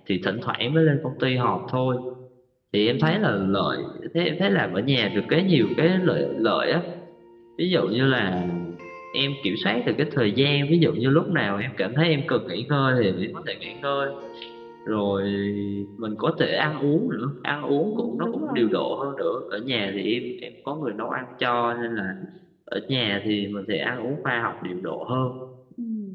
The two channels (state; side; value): identical; both; correlation 1.00